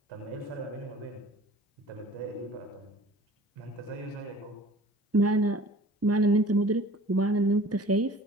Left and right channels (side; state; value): both; normal; correlation 0.46